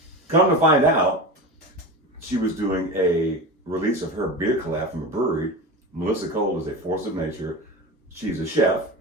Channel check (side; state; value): both; normal; correlation 0.27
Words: Come to find out, she was doing a release of her beer collab from a brewery, Melissa Cole is a force of nature. She's a chef.